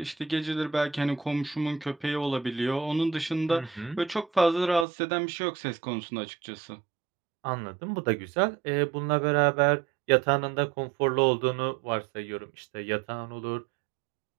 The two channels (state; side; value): drops out; left; at 4.9 s